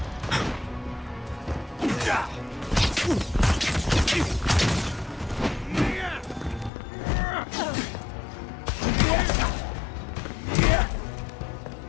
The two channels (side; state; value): right; drops out; at 6.7 s